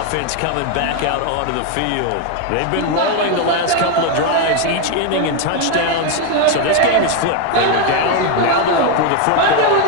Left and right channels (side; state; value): both; different; correlation 0.02